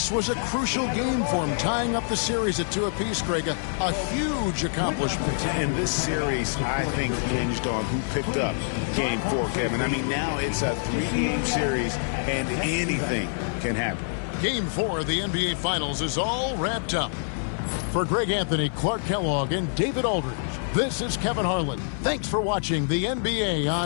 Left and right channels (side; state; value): right; silent; digital silence